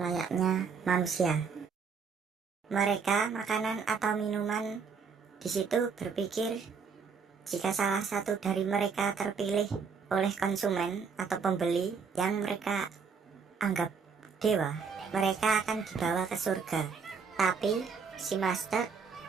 manusia. Mereka, makanan atau minuman di situ berpikir jika salah satu dari mereka terpilih oleh konsumen atau pembeli yang mereka anggap dewa, mereka akan dibawa ke surga. Tapi si master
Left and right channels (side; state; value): left; quieter; 5.7 dB